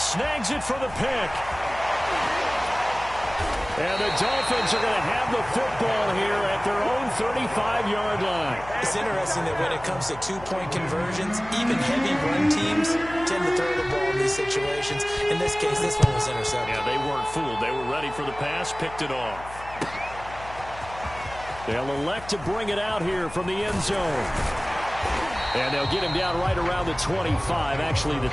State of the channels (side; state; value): left; noise; hum, 16 dB below the sound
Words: Snags it for the pick. And the Dolphins are going to have the football here at their own 35-yard line. It's interesting that when it comes to two-point conversions, even heavy run teams tend to throw the ball in these situations. In this case, this one was intercepted. Yeah, they weren't fooled. They were ready for the pass, picked it off. They'll elect to bring it out here from the end zone. And they'll get him down right around the 25, actually